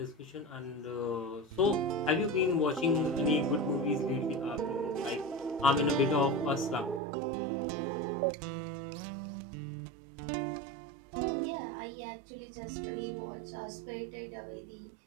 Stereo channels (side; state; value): left; drops out; at 7.0 s